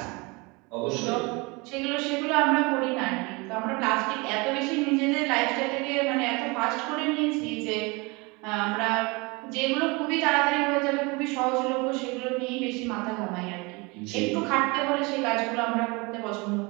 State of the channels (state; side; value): quieter; left; 26.8 dB